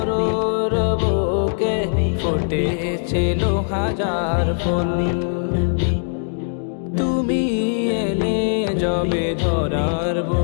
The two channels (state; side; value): silent; right; digital silence